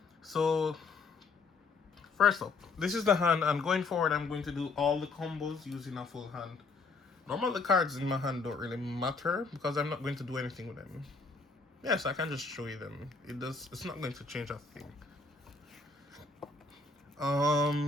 So, first up, this is the hand, and going forward, I'm going to do all the combos using a full hand. Normally, the cards in my hand don't really matter because I'm not going to do anything with them. Yes, I can just show you them. It's not going to change a thing.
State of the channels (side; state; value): right; quieter; 4.1 dB